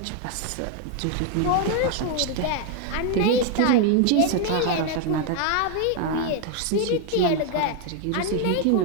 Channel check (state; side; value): different; both; correlation 0.01